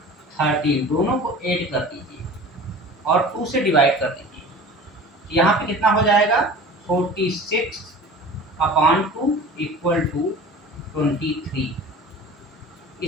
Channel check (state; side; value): normal; both; correlation 0.40